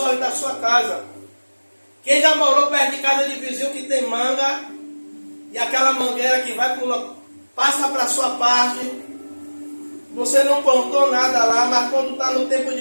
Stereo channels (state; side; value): inverted; both; correlation -1.00